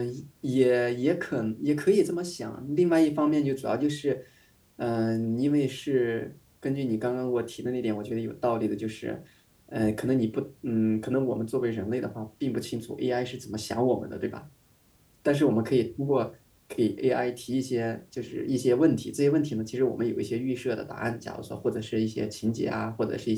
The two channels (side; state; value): both; identical; correlation 1.00